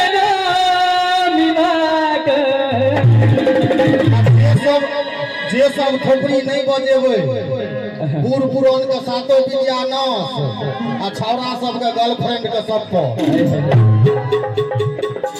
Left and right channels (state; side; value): identical; both; correlation 1.00